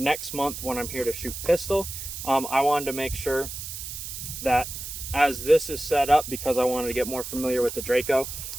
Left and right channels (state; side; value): noise; right; hiss, 8 dB below the sound